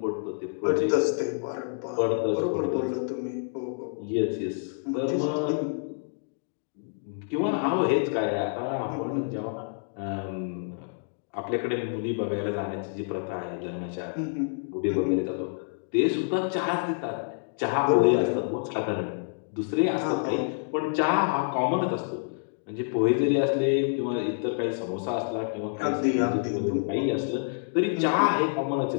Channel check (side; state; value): right; silent; digital silence